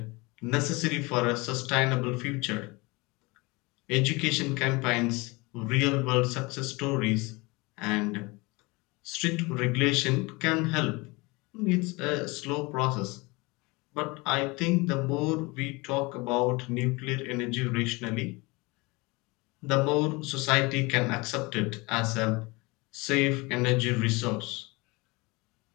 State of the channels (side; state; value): right; quieter; 25.1 dB